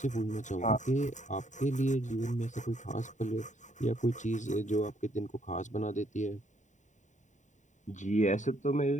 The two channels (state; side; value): late; right; 0.35 ms